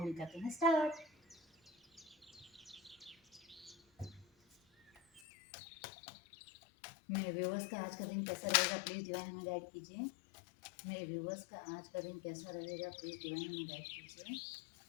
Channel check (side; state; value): right; drops out; at 5.2 s